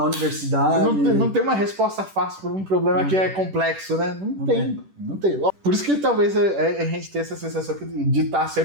universidade. Não tem uma resposta fácil para um problema que é complexo, né? Não tem. Por isso que talvez a gente tenha essa sensação de estar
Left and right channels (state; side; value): late; left; 10 ms